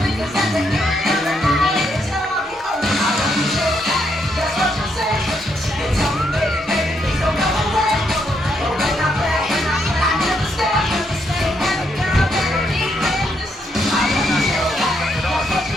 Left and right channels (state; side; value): normal; both; correlation 0.77